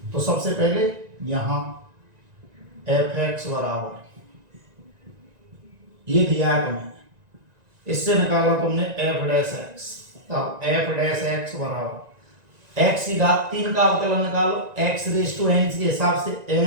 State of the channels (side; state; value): left; late; 1.9 ms